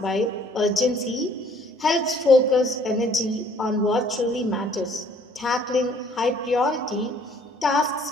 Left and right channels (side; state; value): both; normal; correlation 0.59